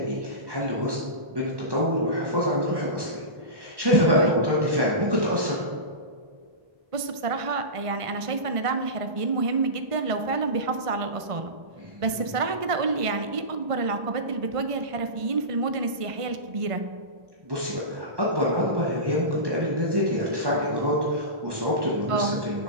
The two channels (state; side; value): late; left; 1.5 ms